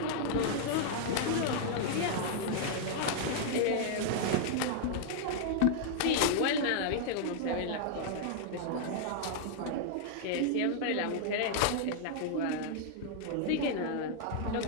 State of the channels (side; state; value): both; different; correlation -0.01